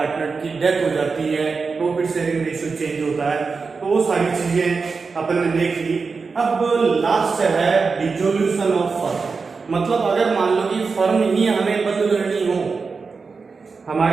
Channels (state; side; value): quieter; left; 4.7 dB